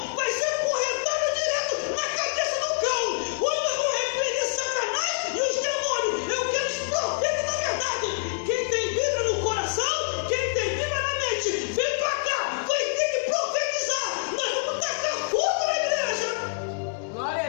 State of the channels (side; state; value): right; silent; digital silence